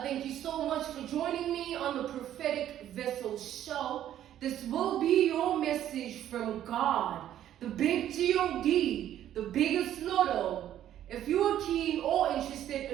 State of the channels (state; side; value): quieter; left; 11.5 dB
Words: thank you so much for joining me on the Prophetic Vessel Show. This will be your message from God, the big G-O-D, the biggest lotto. If you are keen or